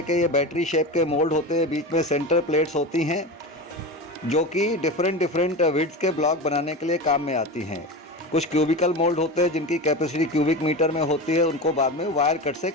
के ये बैटरी शेप के मोल्ड होते हैं। बीच में सेंटर प्लेट्स होती हैं जो कि डिफरेंट विड्थ के ब्लॉक बनाने के लिए काम में आती हैं। कुछ क्यूबिकल मोल्ड होते हैं जिनकी कैपेसिटी क्यूबिक मीटर में होती है, उनको बाद में वायर कट से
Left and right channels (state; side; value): normal; both; correlation 0.25